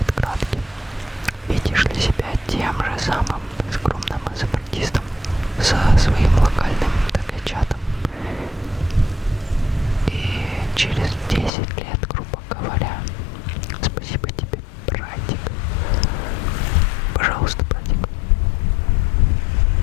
кратким. Видишь ли себя тем же самым скромным изобретистом со своим локальным ТГ-чатом? И через 10 лет, грубо говоря, спасибо тебе, братик. Пожалуйста, братик.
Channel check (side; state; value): right; drops out; at 11.5 s